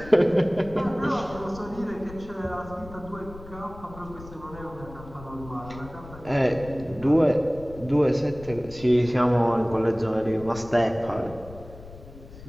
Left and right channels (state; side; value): noise; left; rumble, 16 dB below the sound